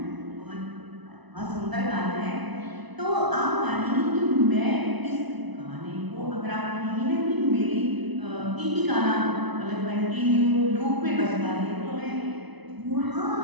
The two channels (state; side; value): late; left; 1.0 ms